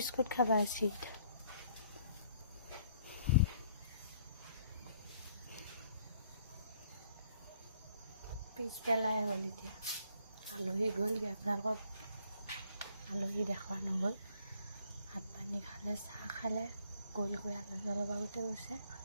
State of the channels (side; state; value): both; inverted; correlation -0.63